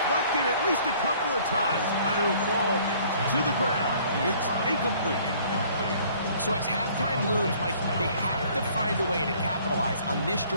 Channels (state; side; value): inverted; both; correlation -0.56